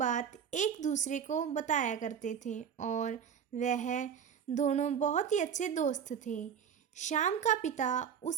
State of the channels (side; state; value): left; quieter; 7.9 dB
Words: एक दूसरे को बताया करते थे और वह दोनों बहुत ही अच्छे दोस्त थे। श्याम का पिता